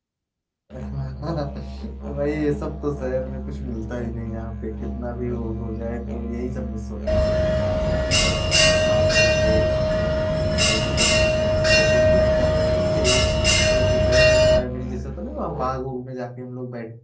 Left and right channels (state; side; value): identical; both; correlation 1.00